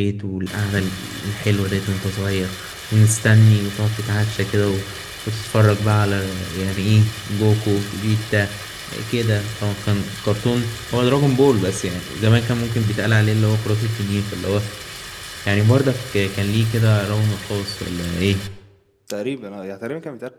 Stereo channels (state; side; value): identical; both; correlation 1.00